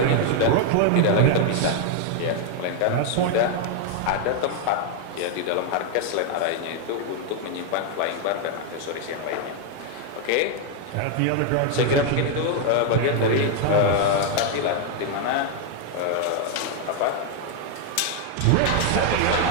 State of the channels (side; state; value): both; different; correlation 0.00